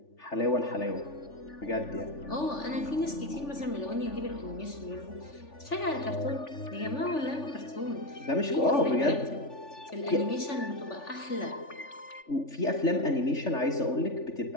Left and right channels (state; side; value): late; right; 3.4 ms